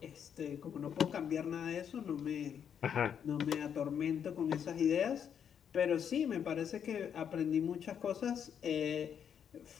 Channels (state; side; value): quieter; right; 8.2 dB